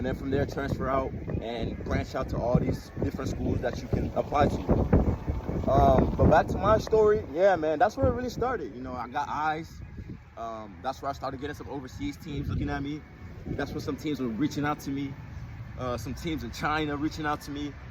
then from there transfer out and branch out to all these different schools that you can apply to. But back to my story, yeah, man, that's where it really started. You know, I got eyes. That's where I started getting some overseas teams looking at me. That's where some teams were reaching out to me. Some teams in China reaching out to me.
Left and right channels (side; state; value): both; identical; correlation 1.00